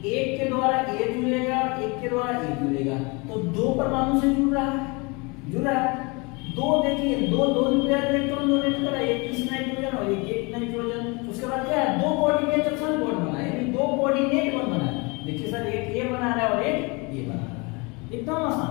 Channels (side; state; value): right; quieter; 28.6 dB